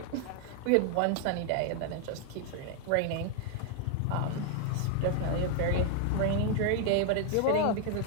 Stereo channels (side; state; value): both; different; correlation 0.00